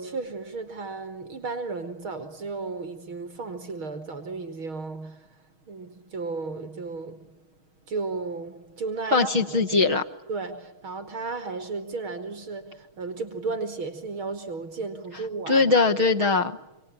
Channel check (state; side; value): late; left; 6.4 ms